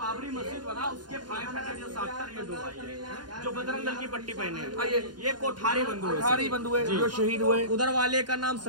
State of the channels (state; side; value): late; left; 0.70 ms